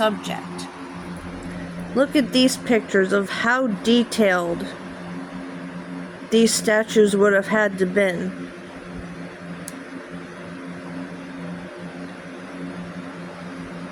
Look at these pictures of how detailed these statues would have had to been.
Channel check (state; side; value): identical; both; correlation 1.00